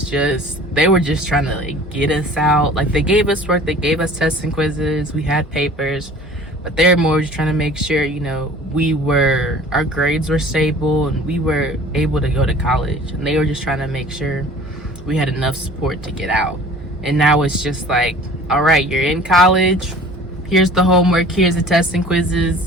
they were just trying to get us out. They gave us work, they gave us tests and quizzes, we had papers, but they're more just trying to make sure, our grades were stable and we were able to go to college. And they were just trying to make sure we had enough support to get out. And now it's just all right, you're in college, here's the homework, here's the tests and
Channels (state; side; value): normal; both; correlation 0.47